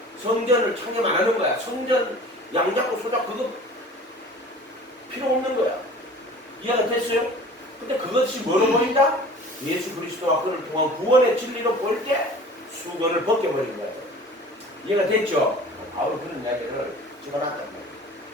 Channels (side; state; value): both; normal; correlation 0.43